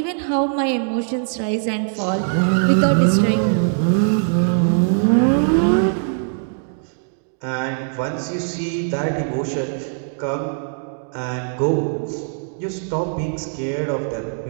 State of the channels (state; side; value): silent; left; digital silence